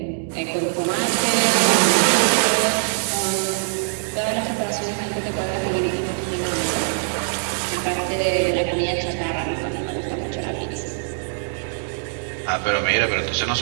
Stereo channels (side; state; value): left; silent; digital silence